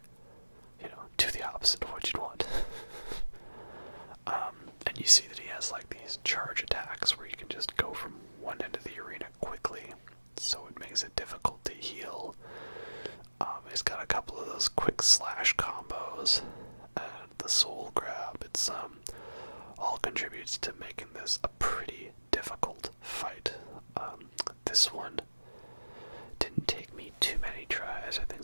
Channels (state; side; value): inverted; both; correlation -1.00